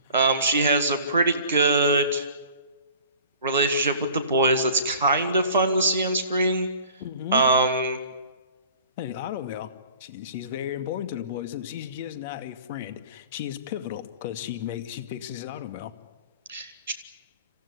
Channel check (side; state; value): both; inverted; correlation -0.46